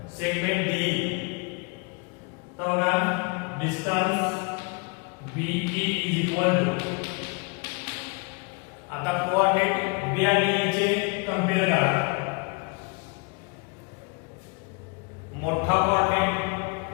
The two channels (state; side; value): quieter; right; 31.4 dB